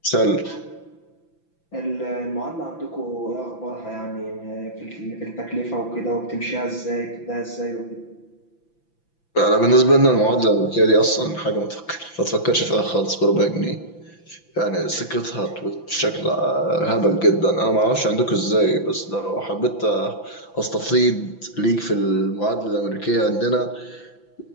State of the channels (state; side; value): late; right; 5.9 ms